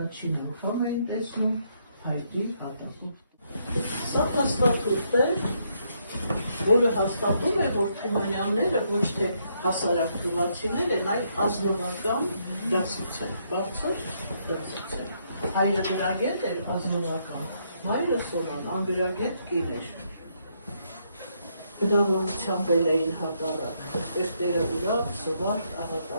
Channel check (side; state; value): both; inverted; correlation -0.75